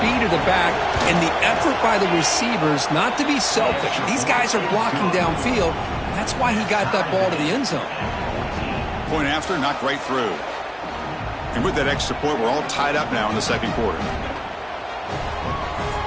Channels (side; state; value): both; identical; correlation 1.00